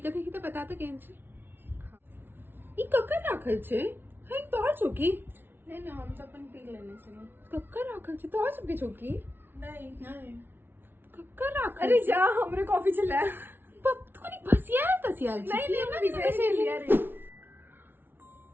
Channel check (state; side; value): late; left; 0.10 ms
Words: देखी तो बता तो केन छे ई कक्कर राखल छे हे तोहर चौकी नहीं नहीं हम तो अपन पी लेने से कक्कर राखल छे तोहर सबके चौकी नहीं नहीं कक्कर राखल अरे जा हमरे कॉफी चला पप तू नहीं भसियाल तसियाल नहीं नहीं मैं विजय लिया रे